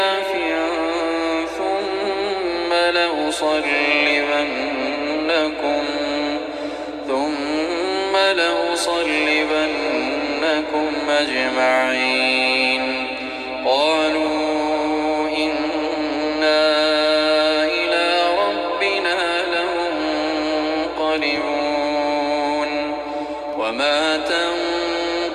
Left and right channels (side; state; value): both; identical; correlation 1.00